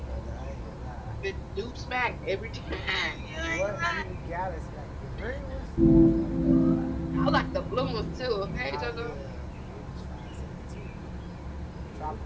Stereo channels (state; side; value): identical; both; correlation 1.00